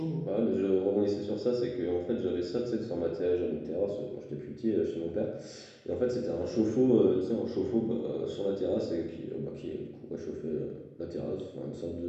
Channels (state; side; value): identical; both; correlation 1.00